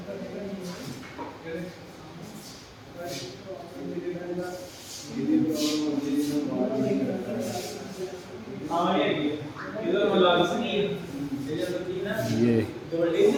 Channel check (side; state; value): both; identical; correlation 1.00